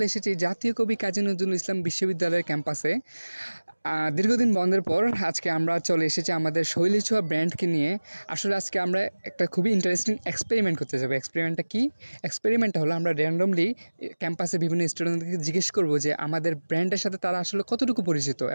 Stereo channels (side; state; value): both; inverted; correlation -1.00